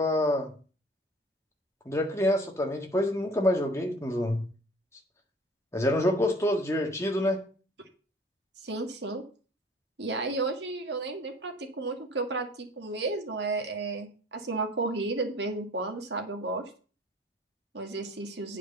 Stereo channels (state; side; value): normal; both; correlation 0.49